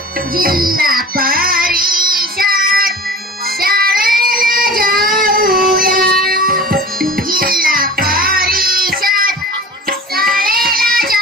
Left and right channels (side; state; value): both; normal; correlation 0.38